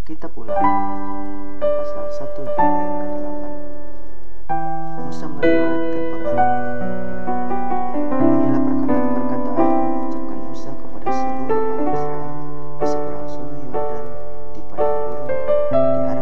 Kitab Ulangan pasal 1 ayat ke-8. Musa meriwayatkan pengalaman. Inilah perkataan-perkataan yang diucapkan Musa kepada seluruh orang Israel di seberang sungai Yordan, di padang gurun, di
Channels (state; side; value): identical; both; correlation 1.00